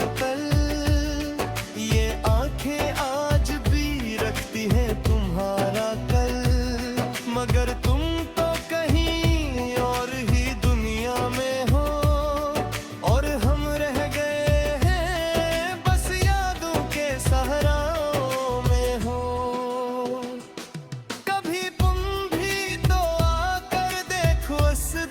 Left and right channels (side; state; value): both; identical; correlation 1.00